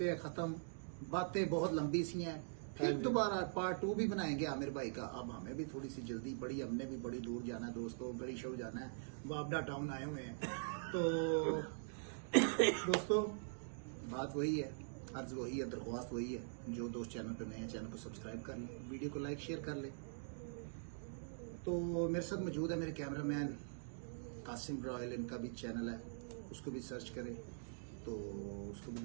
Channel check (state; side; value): silent; left; digital silence